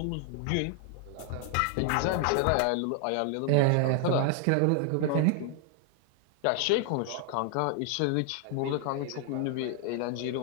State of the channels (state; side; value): different; both; correlation 0.00